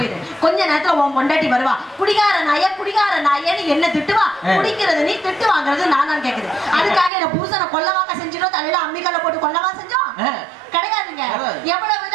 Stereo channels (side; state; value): left; drops out; at 7.1 s